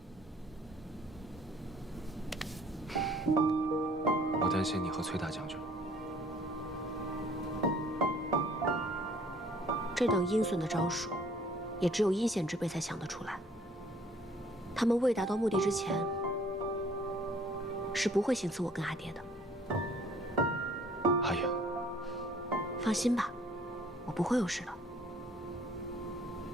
我担心你和崔大将军。这等阴损的招数，也只有阴险之辈才想得出来。他们未达到目的之前，是不会行刺我跟阿爹的。阿影，放心吧，我不会有事的。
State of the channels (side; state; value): both; normal; correlation 0.58